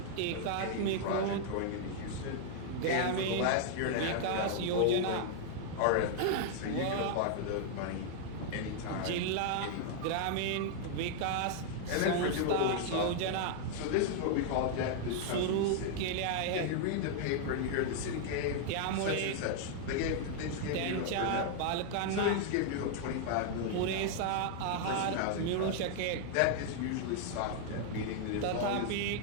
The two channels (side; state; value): both; different; correlation 0.00